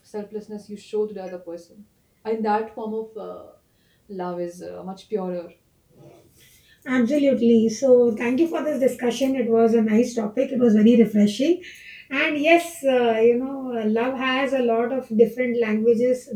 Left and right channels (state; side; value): identical; both; correlation 1.00